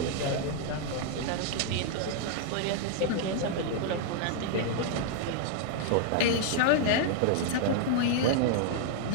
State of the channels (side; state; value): both; different; correlation 0.00